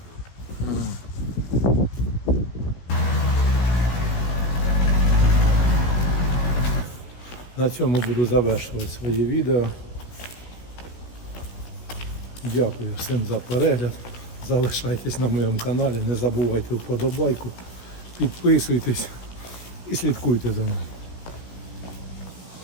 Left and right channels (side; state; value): right; late; 16 ms